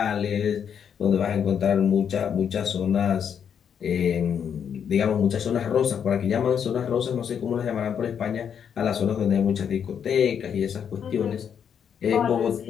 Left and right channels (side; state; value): right; quieter; 7.9 dB